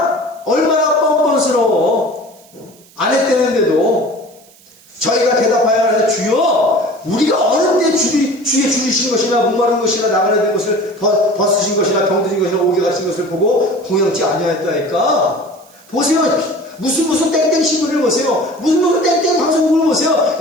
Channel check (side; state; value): right; noise; hiss, 27 dB below the sound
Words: 얼마나 뻔뻔스러워. 안 했대는데도 저희가 대답하여 하는데 주여 우리가 어느 때 주의 줄이신 것이나 목마른 것이나 나그네 된 것을 벗으신 것이나 병든 것이나 옥에 갇힌 것을 보고 궁양치 아니하였다니까. 보세요. 무슨 땡땡 신문을 보세요. 무슨 땡땡 방송국을 보세요.